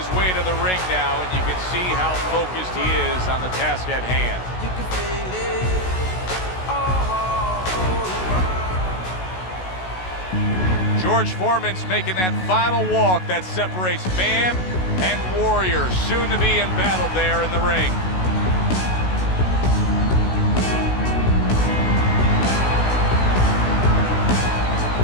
way to the ring now, and you can see how focused he is on the task at hand. You can feel it. George Foreman's making that final walk that separates man and warrior, soon to be in battle there in the ring.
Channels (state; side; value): late; right; 16 ms